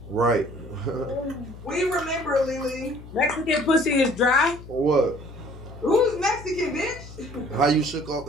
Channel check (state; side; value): noise; left; hum, 16 dB below the sound